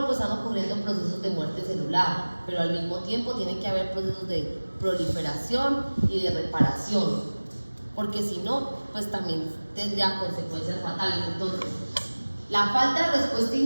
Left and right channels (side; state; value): both; inverted; correlation -1.00